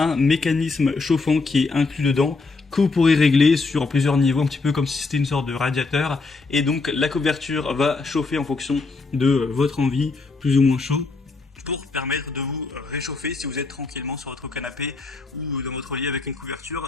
mécanisme chauffant qui est inclus dedans, que vous pourrez régler sur plusieurs niveaux, un petit peu comme si c'était une sorte de radiateur, et donc la couverture va chauffer en fonction de votre envie, plus ou moins chaud, pour permettre de vous réchauffer si vous êtes tranquillement sur votre canapé ou dans votre lit avec une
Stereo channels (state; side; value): quieter; right; 3.9 dB